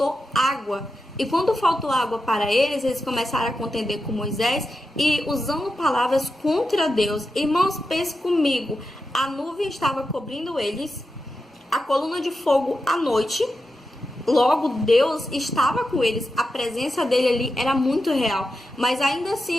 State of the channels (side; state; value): both; normal; correlation 0.89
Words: água. E quando faltou água para eles, eles começaram a contender com Moisés e usando palavras contra Deus. Irmãos, pense comigo, a nuvem estava cobrindo eles, a coluna de fogo à noite. Logo, Deus estava com eles, a presença dele ali era muito real. Mas ainda